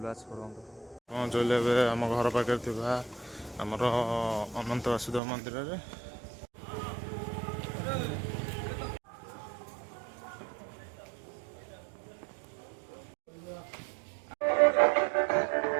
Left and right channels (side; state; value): left; drops out; at 5.2 s